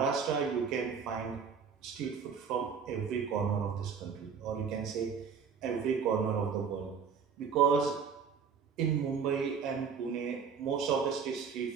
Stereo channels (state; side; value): quieter; left; 6.4 dB